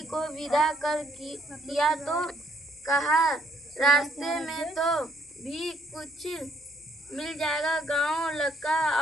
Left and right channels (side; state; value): both; normal; correlation 0.66